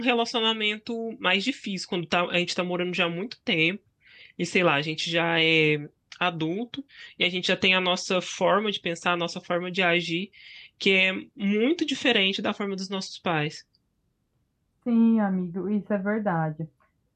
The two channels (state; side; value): identical; both; correlation 1.00